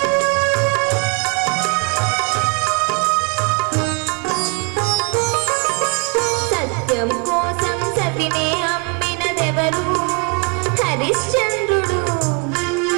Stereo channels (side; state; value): left; quieter; 33.5 dB